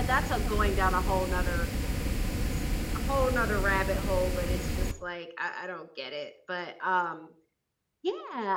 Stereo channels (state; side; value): identical; both; correlation 1.00